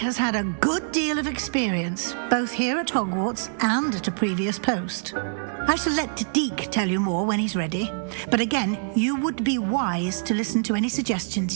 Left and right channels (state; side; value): silent; left; digital silence